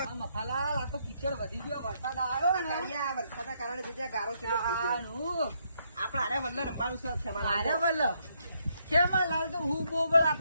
આ મફાલાલ, આ તો કિચડ વધી ગયો. વરસાદ આવ્યો ને. કાળિયા, વરસાદના કારણે જે જ્યાં ગારો ચેટલો થઈ ગયો. આનું. આપણે હારે વલ્લા રમવાનું છે ખેમાલાલ. અરે વલ્લ. ખેમાલાલ તો હું બોબડા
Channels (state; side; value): inverted; both; correlation -0.75